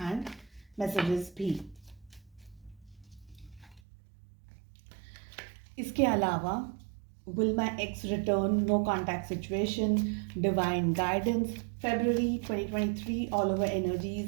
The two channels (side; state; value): left; drops out; at 3.8 s